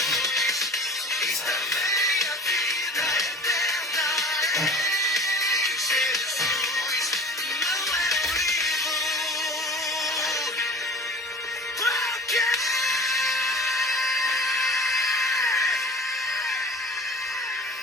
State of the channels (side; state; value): both; normal; correlation 0.41